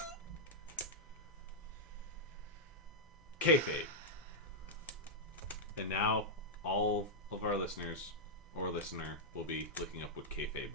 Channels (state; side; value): normal; both; correlation -0.06